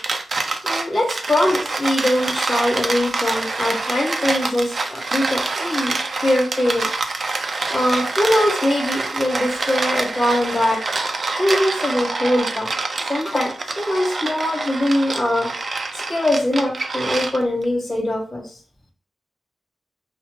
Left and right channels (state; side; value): normal; both; correlation 0.91